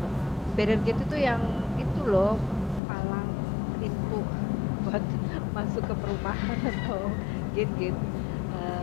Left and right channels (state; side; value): drops out; right; at 2.8 s